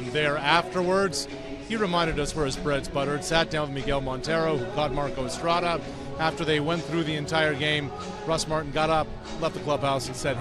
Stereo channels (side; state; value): both; identical; correlation 1.00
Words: there. Afterwards, he reminded us where his bread's buttered, sat down with Miguel Montero, who caught Marco Estrada. After they went through the entire game, Russ Martin got up, left the clubhouse, and said,